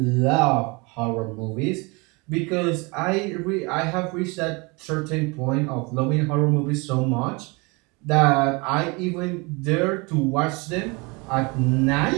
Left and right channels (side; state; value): left; quieter; 27.8 dB